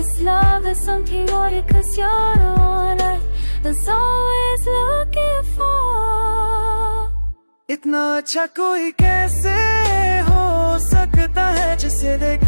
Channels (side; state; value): both; inverted; correlation -1.00